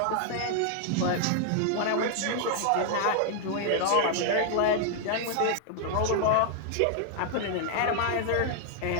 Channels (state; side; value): different; both; correlation 0.00